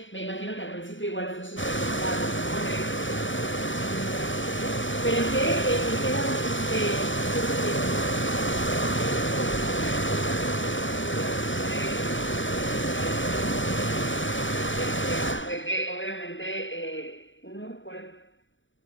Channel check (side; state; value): right; late; 0.55 ms